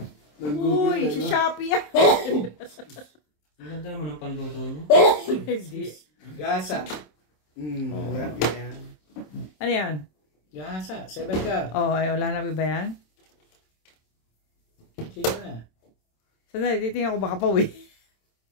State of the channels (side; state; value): right; late; 27 ms